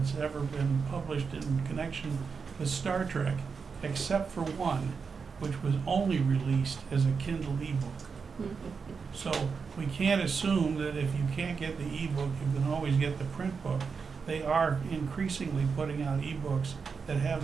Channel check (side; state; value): left; quieter; 5.5 dB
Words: ever been published in connection with Star Trek, except for one, which was only released as a Kindle ebook. So we can't assume that if you can't get the ebook, you can always get the print book. They are increasingly putting out ebooks that